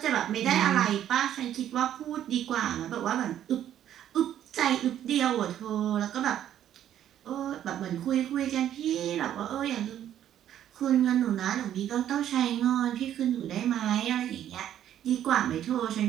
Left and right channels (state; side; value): quieter; left; 11.0 dB